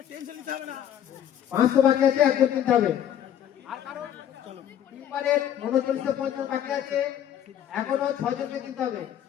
500 বাকি আছে, একজন কিনতে হবে। আর কারণ টিম্বারের 3950 বাকি আছে, এখনো 6জনকে কিনতে হবে।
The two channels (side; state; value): right; quieter; 10.2 dB